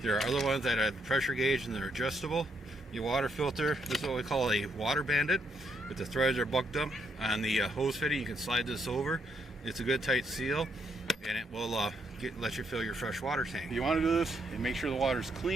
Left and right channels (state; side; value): normal; both; correlation 0.76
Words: There are other ones that have the pressure gauge and they're adjustable. Your water filter, this is what we call a water bandit. If the threads are bucked up on the hose fitting, you can slide this over. It's a good tight seal, and it will let you fill your fresh water tank. You want to do this and make sure the water is